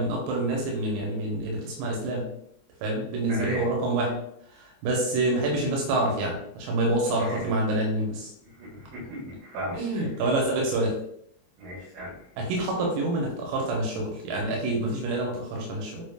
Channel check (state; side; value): late; left; 22 ms